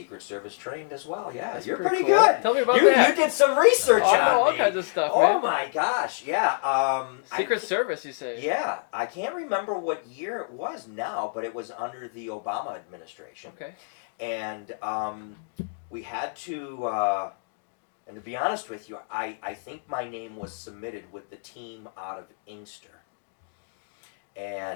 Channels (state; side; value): silent; right; digital silence